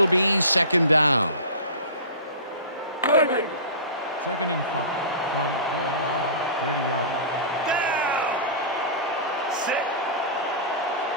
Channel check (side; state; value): both; inverted; correlation -0.32